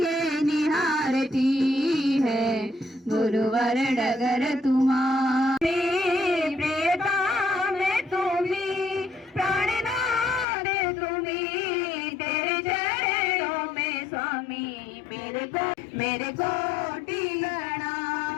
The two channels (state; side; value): drops out; right; at 10.5 s